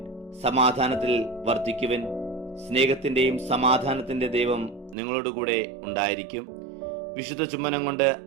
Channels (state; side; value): drops out; left; at 5.0 s